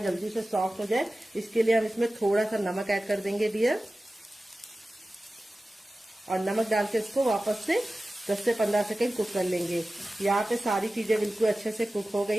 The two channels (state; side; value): normal; both; correlation 0.95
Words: जल्दी से सॉफ्ट हो जाए, इसके लिए हम इसमें थोड़ा सा नमक ऐड कर देंगे डियर, और नमक डाल के इसको वापस से 10 से 15 सेकंड कुक कर लेंगे। यहाँ पे सारी चीजें बिल्कुल अच्छे से कुक हो